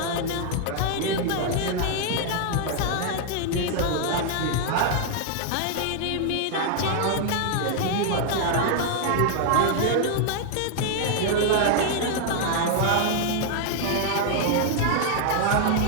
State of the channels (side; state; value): both; different; correlation 0.00